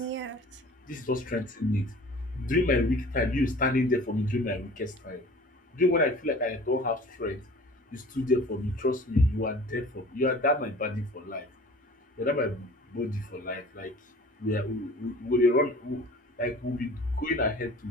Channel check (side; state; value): both; normal; correlation 0.45